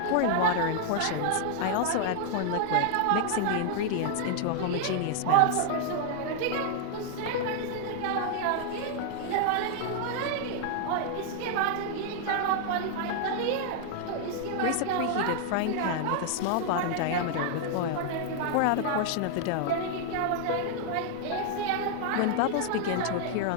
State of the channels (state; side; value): different; both; correlation 0.00